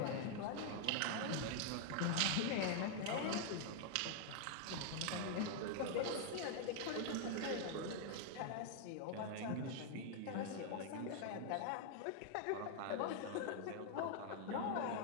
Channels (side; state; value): both; different; correlation 0.00